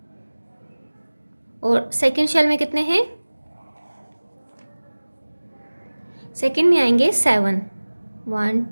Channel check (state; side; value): inverted; both; correlation -1.00